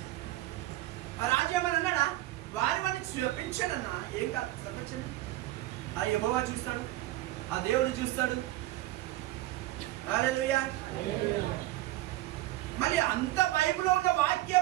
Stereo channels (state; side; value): quieter; left; 16.4 dB